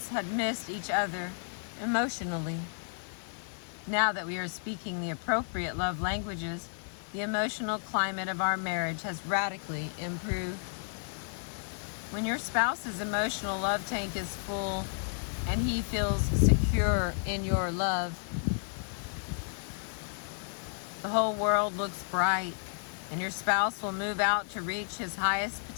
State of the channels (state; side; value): silent; right; 56 dB below the other